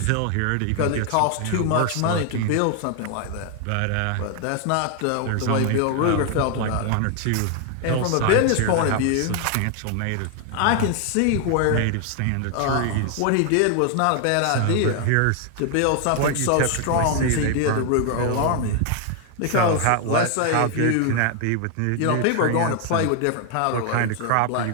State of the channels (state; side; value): different; both; correlation 0.00